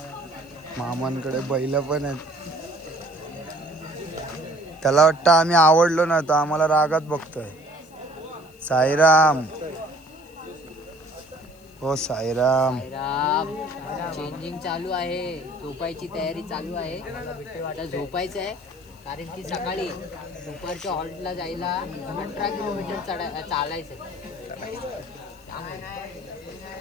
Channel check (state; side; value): noise; left; hiss, 27 dB below the sound